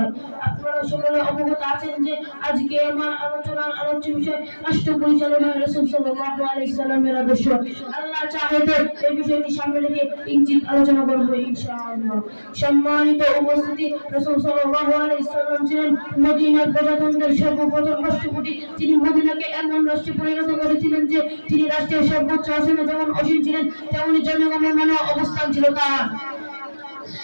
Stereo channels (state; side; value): inverted; both; correlation -1.00